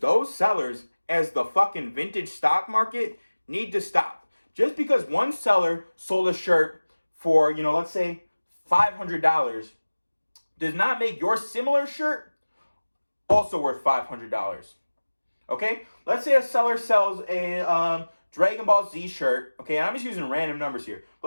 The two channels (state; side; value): inverted; both; correlation -1.00